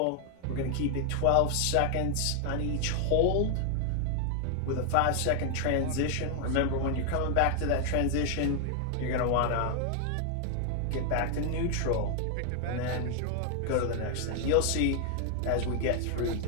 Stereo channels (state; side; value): different; both; correlation 0.00